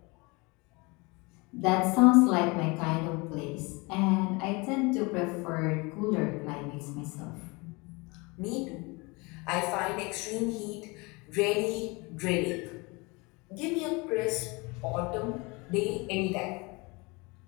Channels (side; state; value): right; quieter; 26.7 dB